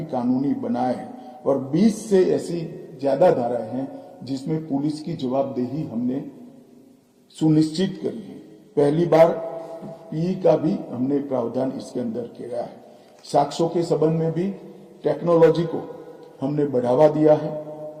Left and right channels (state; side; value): identical; both; correlation 1.00